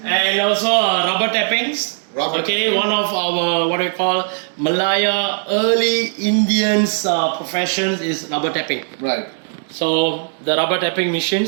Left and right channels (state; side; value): silent; left; 65 dB below the other